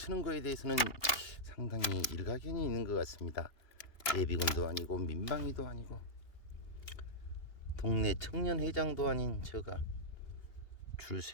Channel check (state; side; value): late; right; 2.8 ms